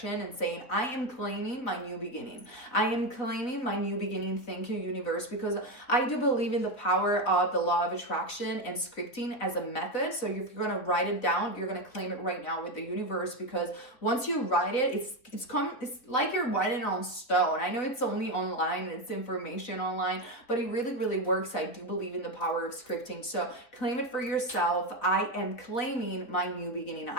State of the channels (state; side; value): late; right; 4.2 ms